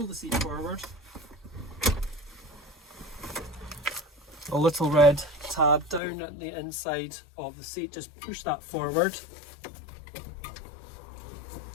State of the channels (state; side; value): drops out; right; at 6.0 s